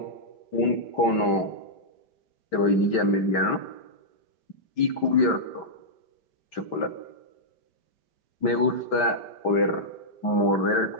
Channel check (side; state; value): right; late; 5.1 ms